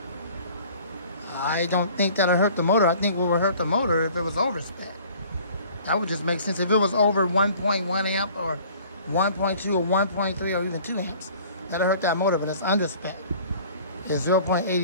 I don't think that'll hurt the motor. I think what would hurt the motor if it was over spec. That would just make sense. If it was over 1.1 amp or 1.2 or 1.3 or even 2 amps, that'll hurt that motor, but it's under spec. It's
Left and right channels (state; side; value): inverted; both; correlation -0.50